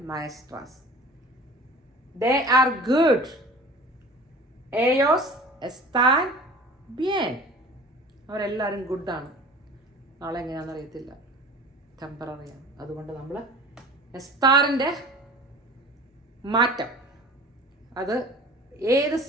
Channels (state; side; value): normal; both; correlation 0.42